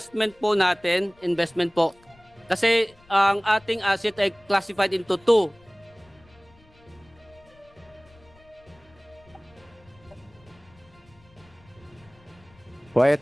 po natin, investment po. Kasi ang ating asset ay classified into two. Quiet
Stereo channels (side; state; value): left; noise; rumble, 28 dB below the sound